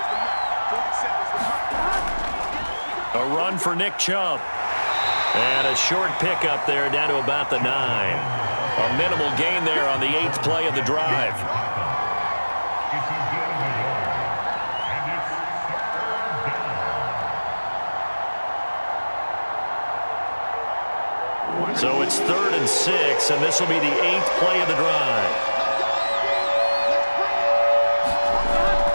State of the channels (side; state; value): both; inverted; correlation -1.00